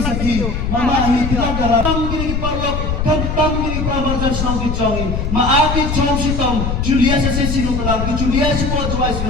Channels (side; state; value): left; noise; rumble, 2 dB below the sound